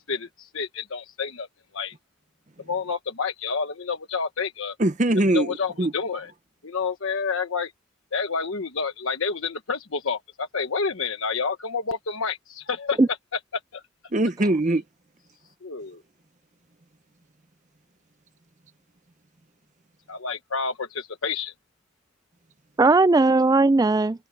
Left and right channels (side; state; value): both; normal; correlation 0.37